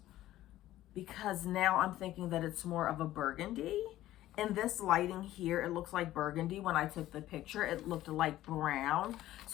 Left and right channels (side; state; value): right; quieter; 14.4 dB